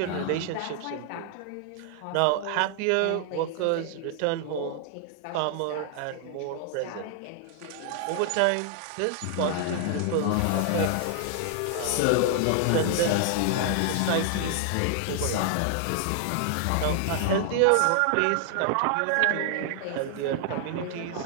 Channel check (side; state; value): both; different; correlation 0.00